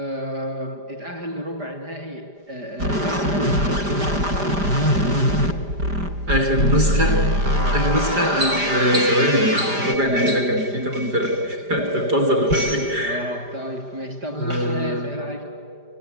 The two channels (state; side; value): late; left; 5.0 ms